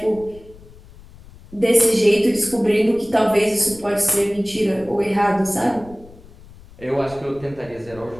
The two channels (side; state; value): left; noise; rumble, 21 dB below the sound